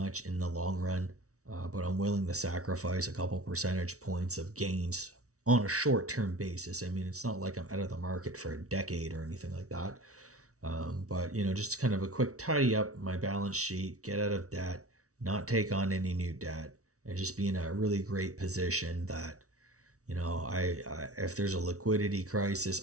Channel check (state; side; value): late; left; 0.65 ms